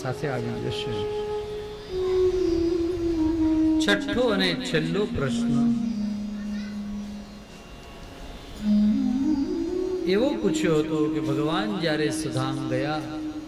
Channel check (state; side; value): identical; both; correlation 1.00